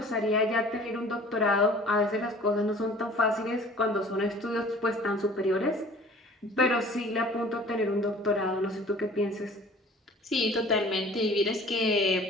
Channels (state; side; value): normal; both; correlation 0.48